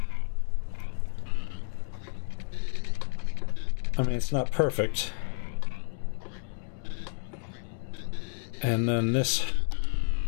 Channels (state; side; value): silent; right; 58 dB below the other